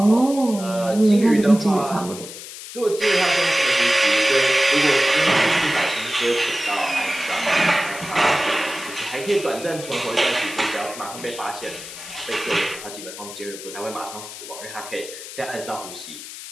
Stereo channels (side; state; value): left; noise; hiss, 12 dB below the sound